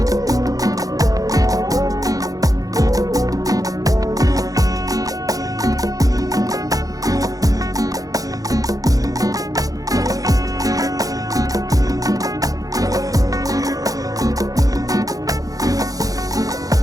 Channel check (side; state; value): left; late; 0.17 ms